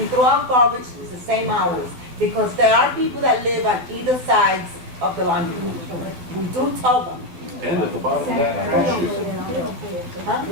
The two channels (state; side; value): late; left; 12 ms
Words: throw out garbage, it's the same hours. Because there are people that live on either sides of the laundry. We do tell them. And at the bottom of that trash chute.